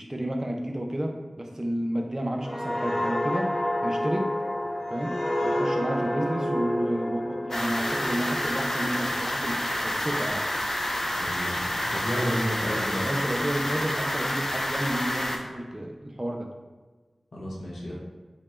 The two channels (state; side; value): normal; both; correlation 0.97